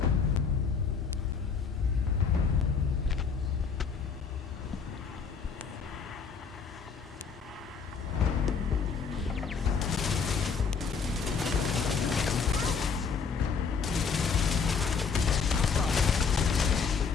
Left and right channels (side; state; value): right; quieter; 5.7 dB